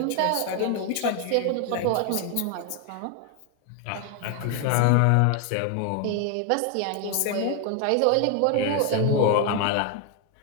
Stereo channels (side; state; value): both; different; correlation 0.01